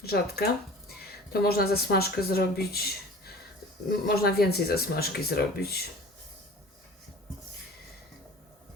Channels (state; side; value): normal; both; correlation 0.42